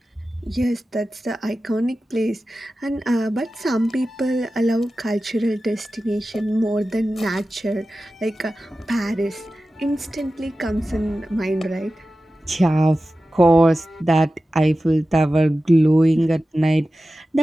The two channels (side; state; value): both; normal; correlation 0.94